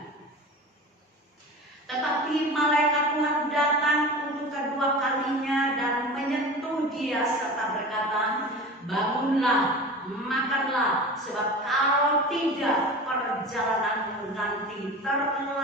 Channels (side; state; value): both; normal; correlation 0.34